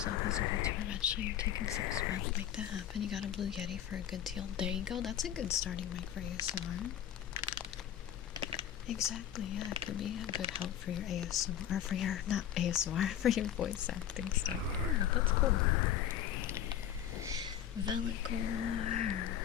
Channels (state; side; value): quieter; right; 10.3 dB